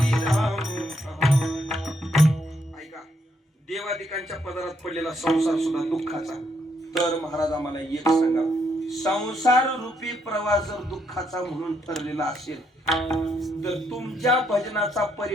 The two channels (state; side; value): normal; both; correlation 0.75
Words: राम कहानी. ऐका, देवादिकांच्या पदरात पडलेला संसार सुद्धा दुःखाचा. तर महाराज आम्हाला एक सांगा, संसार रूपी प्रवास जर दुःखाचा म्हणून ठरलेला असेल तर तुमच्या भजनाचा